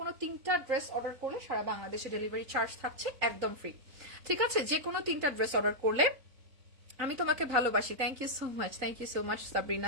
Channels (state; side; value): late; left; 3.8 ms